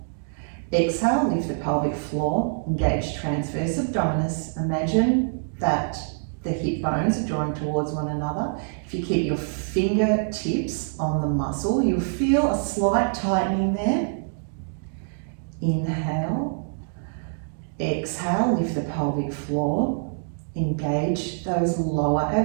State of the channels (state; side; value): silent; left; digital silence